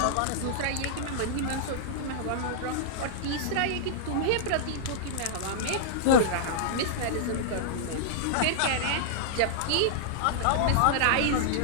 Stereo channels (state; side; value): different; both; correlation -0.01